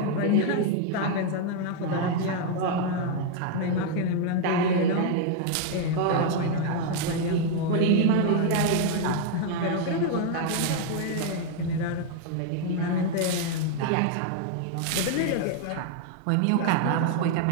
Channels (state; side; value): different; both; correlation 0.00